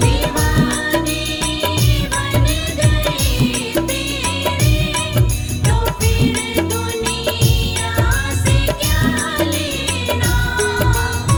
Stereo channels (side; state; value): both; identical; correlation 1.00